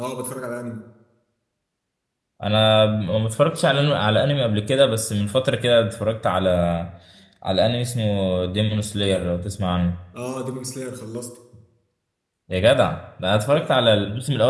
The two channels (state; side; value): identical; both; correlation 1.00